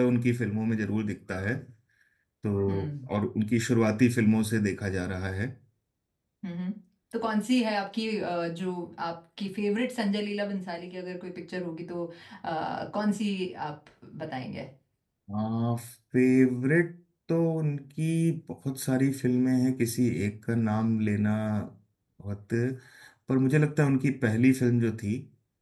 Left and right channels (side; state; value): both; identical; correlation 1.00